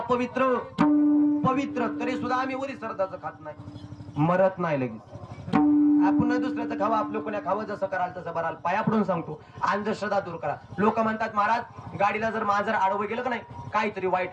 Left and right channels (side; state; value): both; identical; correlation 1.00